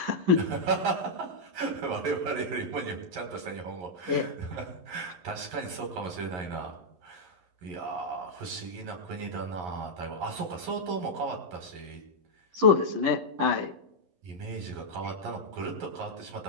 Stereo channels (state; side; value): late; left; 11 ms